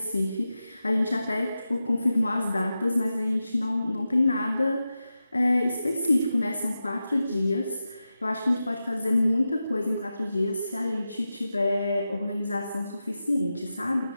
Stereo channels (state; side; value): inverted; both; correlation -0.92